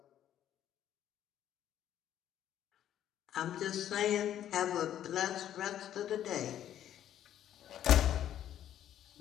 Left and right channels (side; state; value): right; quieter; 11.1 dB